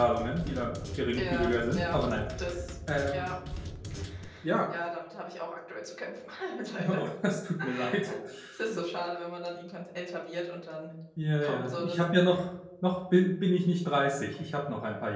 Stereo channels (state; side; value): identical; both; correlation 1.00